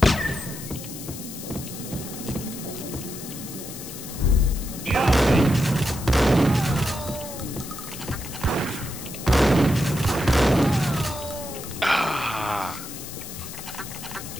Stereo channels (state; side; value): noise; left; hiss, 11 dB below the sound